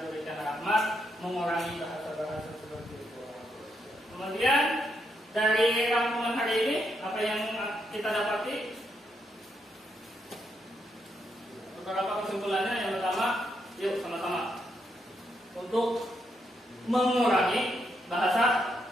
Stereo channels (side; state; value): both; normal; correlation 0.79